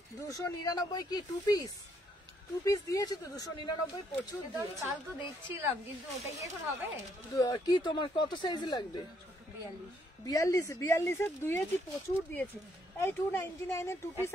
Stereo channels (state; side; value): normal; both; correlation 0.71